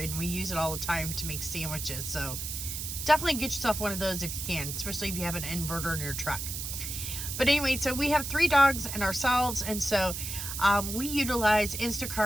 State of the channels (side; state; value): right; noise; hiss, 5 dB below the sound